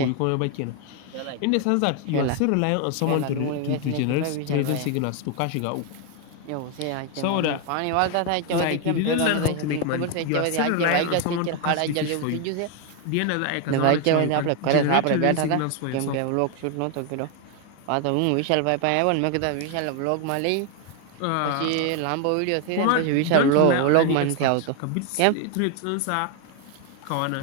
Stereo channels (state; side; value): different; both; correlation 0.01